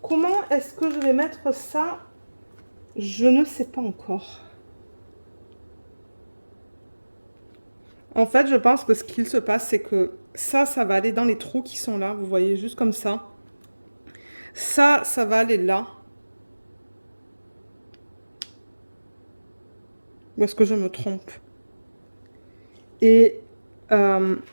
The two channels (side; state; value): both; inverted; correlation -1.00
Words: comment est-ce que je vais mettre ça? Je ne sais pas encore. En fait, je pense que ce qu'il se passe, c'est que ça va aller dans les trous qui sont là. Vous voyez, juste comme ça. Ça va aller là. Ou est-ce que je me trompe? Et